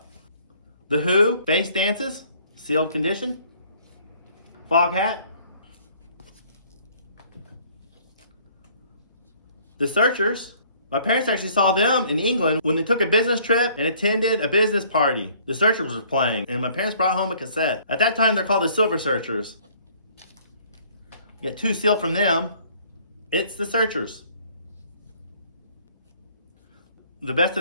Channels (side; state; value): both; inverted; correlation -0.58